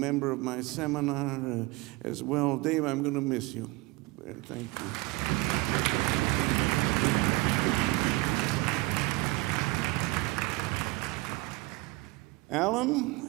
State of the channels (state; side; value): quieter; left; 22.0 dB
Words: of my seminar as well. Dave, I'm going to miss you. Thank you.